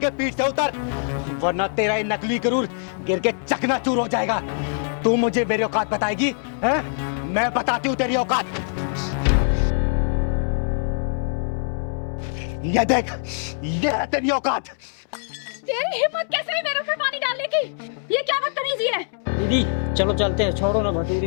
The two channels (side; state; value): right; silent; 63 dB below the other